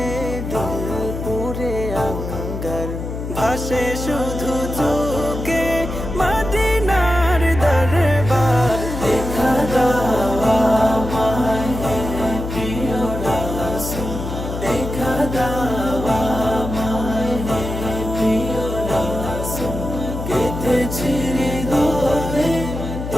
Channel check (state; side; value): noise; left; hum, 6 dB below the sound